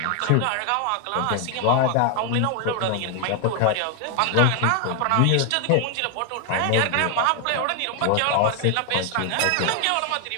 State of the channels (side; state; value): both; different; correlation 0.01